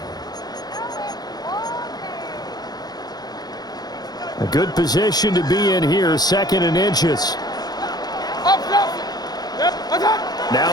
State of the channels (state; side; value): late; right; 0.19 ms